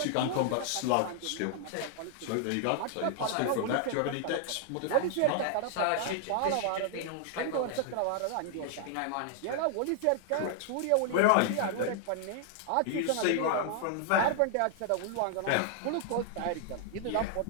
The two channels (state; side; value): different; both; correlation 0.00